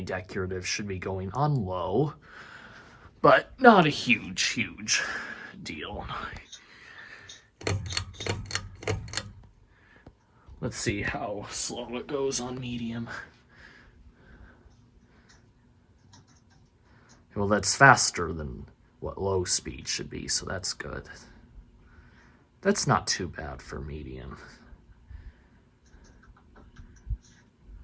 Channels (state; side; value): identical; both; correlation 1.00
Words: decorative should be going on low, but not a huge deal. Let's see how slow it goes on medium. Well, that's faster than what low speed should be, so that's good. That's not too bad for medium.